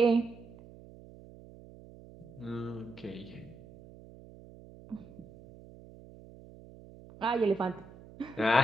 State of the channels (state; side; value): noise; right; hum, 19 dB below the sound